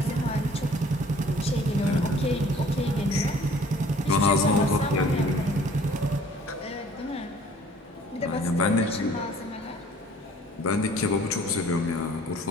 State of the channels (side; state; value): both; normal; correlation 0.53